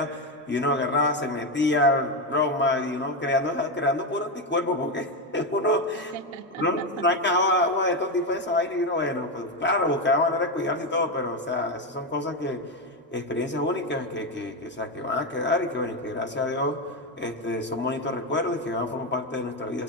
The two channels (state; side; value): normal; both; correlation 0.10